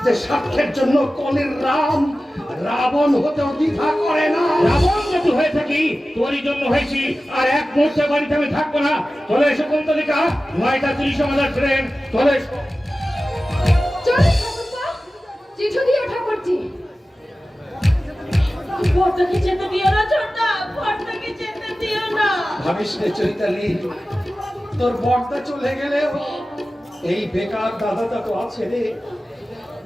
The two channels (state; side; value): normal; both; correlation 0.95